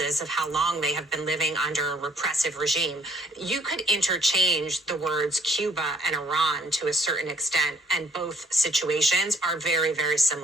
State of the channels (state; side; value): normal; both; correlation 0.63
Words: of how long they have been living under a repressive regime, you could interchange the words Cuba and Iran to a certain extent, and both situations are very, very